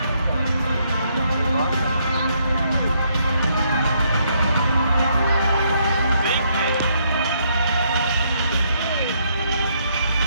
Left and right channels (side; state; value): both; inverted; correlation -0.72